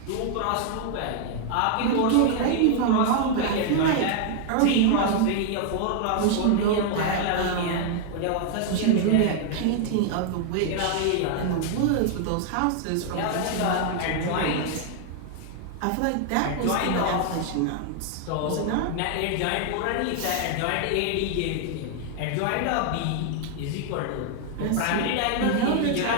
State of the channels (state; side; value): different; both; correlation 0.00